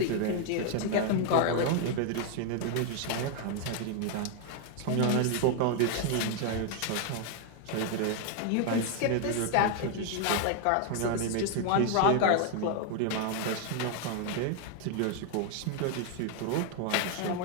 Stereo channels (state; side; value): different; both; correlation 0.00